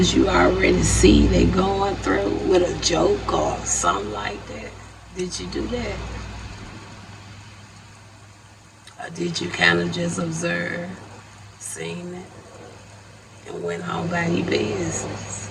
you already see they going through with a joke or something like that? Did you do that? Or did you kind of just observe, seen it, and went on by your business?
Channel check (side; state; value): both; identical; correlation 1.00